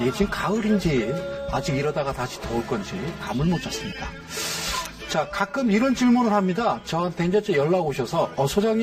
이게 지금 가을인지 아직 이러다가 다시 더울 건지 감을 못 잡습니다. 자, 가끔 이런 질문을 합니다. 저한테 이제 연락 오셔서,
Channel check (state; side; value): identical; both; correlation 1.00